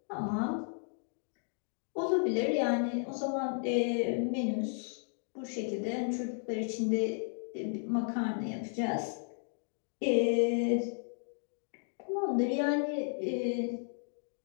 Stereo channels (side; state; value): right; silent; 55 dB below the other